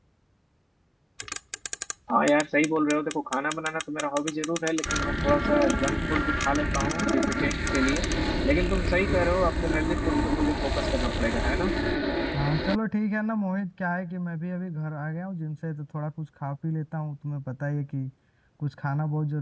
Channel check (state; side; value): identical; both; correlation 1.00